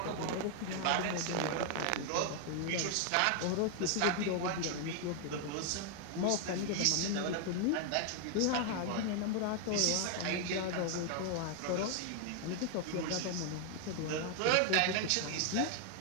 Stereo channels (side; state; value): both; different; correlation 0.00